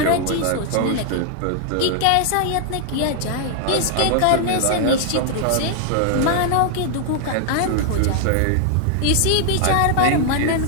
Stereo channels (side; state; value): both; different; correlation 0.00